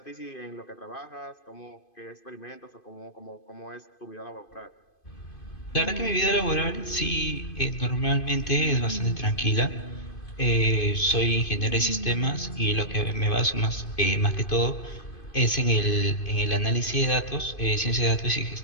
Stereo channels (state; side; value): late; right; 2.5 ms